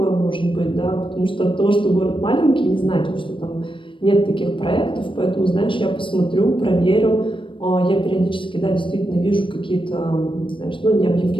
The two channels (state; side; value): late; right; 0.25 ms